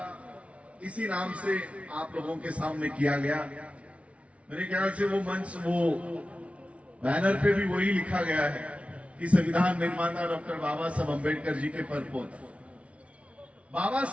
इसी नाम से आप लोगों के सामने किया गया। मेरे ख्याल से वो मंच, वो बैनर पे भी वही लिखा गया है कि संविधान निर्माता डॉक्टर बाबा साहब अम्बेडकर जी के परपोता। बाबा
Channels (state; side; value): late; left; 0.063 ms